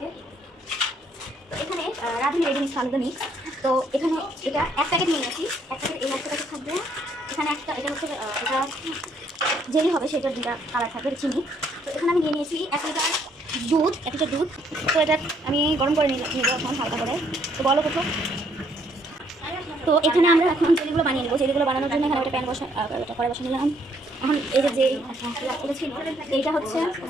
তো এখানে রাঁধুনি রেডি মিক্স ফালুদা মিক্স। তো এখানে এটা এক প্যাকেট নিয়ে নিয়েছি, এক প্যাকেট এই একটা প্যাকেট থাকবে। এখানে একটা এটা হচ্ছে এটা জেলি হবে, সেটার দুটা কালার থাকবে, চিনি। তো এখানে আমি নিয়ে নিয়েছি 1 লিটার দুধ, 1 লিটার দুধ। তো এটা আমি গরম করে নিব এখন হালকা করে। তো বলো কোথাও। তো এখানে আমরা এখন জেলিগুলো বানিয়ে নেবো। জেলিগুলো বানানোর জন্য এখানে একটা প্যান করে বসে নিলাম। এখন এই যে এটা ছিল, এইটা হচ্ছে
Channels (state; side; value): normal; both; correlation 0.68